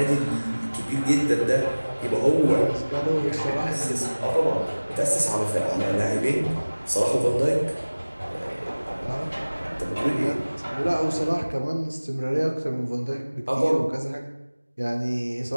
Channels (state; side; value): inverted; both; correlation -1.00